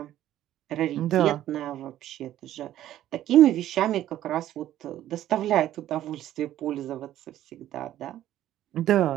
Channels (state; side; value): quieter; left; 12.8 dB